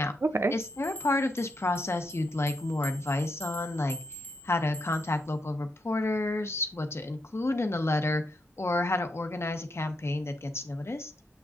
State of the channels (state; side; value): normal; both; correlation 0.80